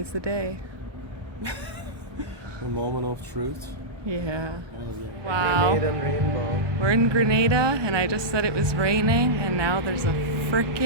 the day. A moment of truth. Yeah. Oh, yeah. Wow. Grenada and rainbow. We're in Grenada and I just said it was raining and now there's a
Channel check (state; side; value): late; left; 1.2 ms